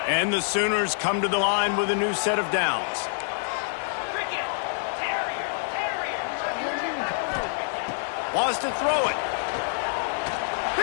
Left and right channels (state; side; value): silent; right; digital silence